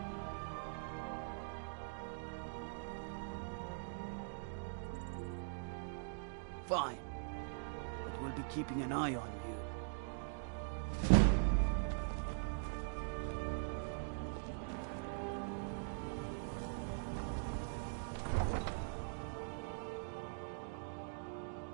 Fine. But we'll be keeping an eye on you.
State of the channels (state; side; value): silent; left; digital silence